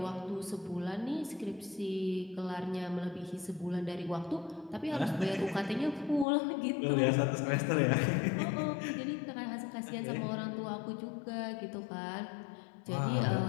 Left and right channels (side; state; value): right; drops out; at 6.2 s